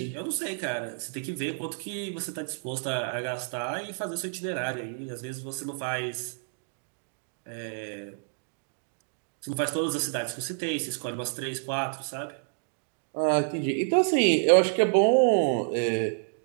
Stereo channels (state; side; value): silent; left; digital silence